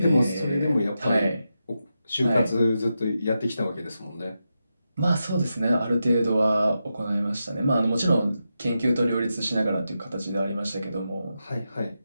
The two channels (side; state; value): both; inverted; correlation -0.88